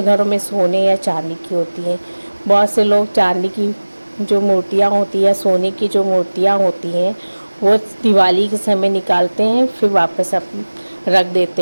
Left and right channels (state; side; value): inverted; both; correlation -1.00